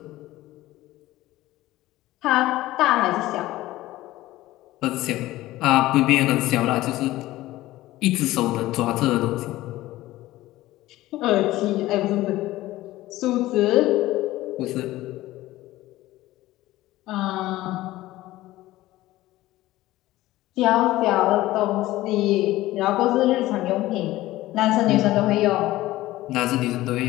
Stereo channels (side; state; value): right; quieter; 16.7 dB